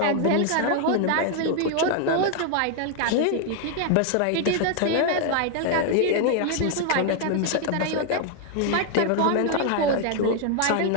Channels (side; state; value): both; different; correlation 0.00